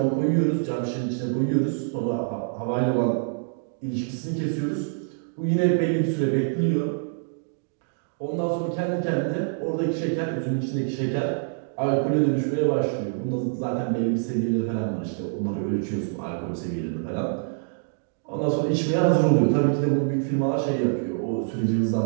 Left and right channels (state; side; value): silent; left; digital silence